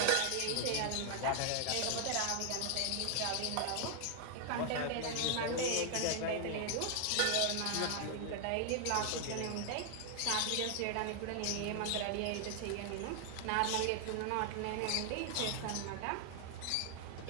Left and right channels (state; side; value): different; both; correlation 0.00